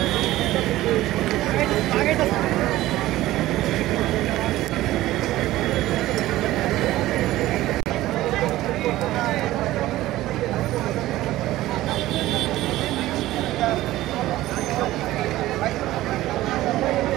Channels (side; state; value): left; quieter; 16.0 dB